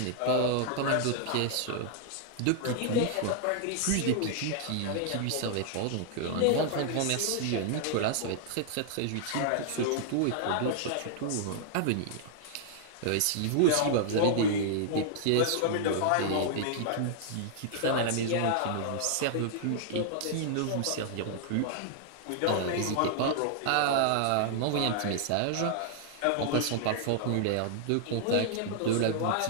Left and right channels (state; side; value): different; both; correlation -0.01